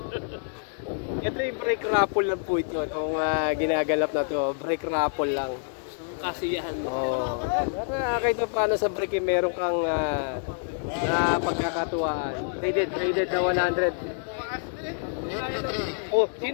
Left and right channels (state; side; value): silent; right; 60 dB below the other